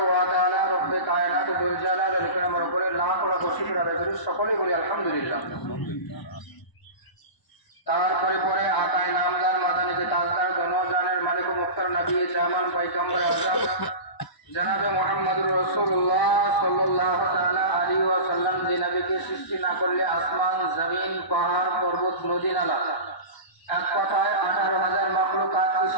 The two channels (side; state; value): right; late; 1.0 ms